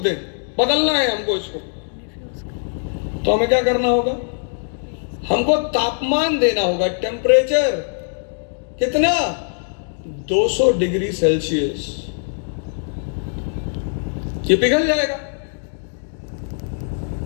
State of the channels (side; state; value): right; silent; digital silence